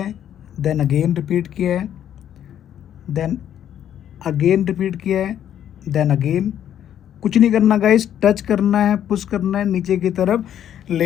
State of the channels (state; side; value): quieter; right; 10.3 dB